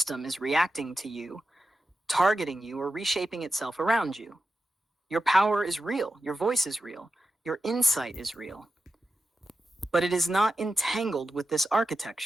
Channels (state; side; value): normal; both; correlation 0.92